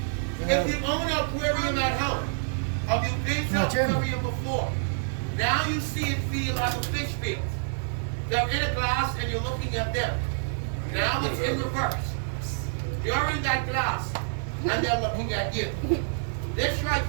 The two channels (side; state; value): left; silent; 60 dB below the other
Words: If you own an aquarium at home, or you've been to an aquarium before, now you see and feel like a fish feels. They're in a glass and you're looking at them. Now it's in reverse. You're in that glass and they're looking at you. This right